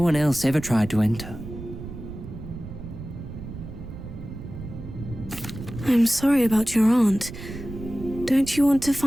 one else ever tried to enter. I'm sorry about your aunt. Don't you want to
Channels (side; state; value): right; noise; rumble, 11 dB below the sound